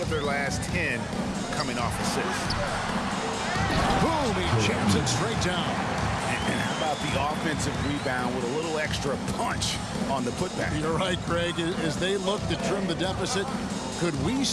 their last 10 coming off assists. Boom, he jams it straight down. And how about the offensive rebound with a little extra punch on the putback? You're right, Craig. As they look to trim the deficit, could we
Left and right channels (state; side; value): identical; both; correlation 1.00